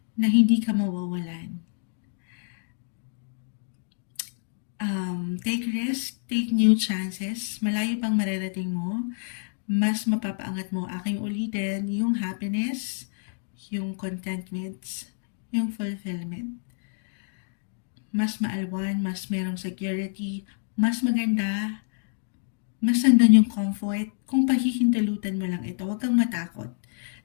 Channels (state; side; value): silent; right; digital silence